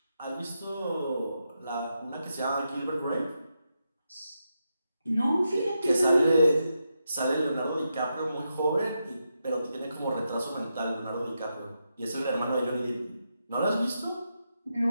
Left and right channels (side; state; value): both; inverted; correlation -0.85